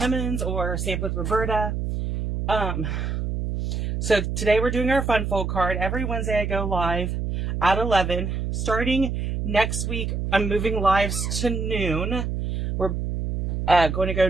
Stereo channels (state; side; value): noise; right; hum, 2 dB below the sound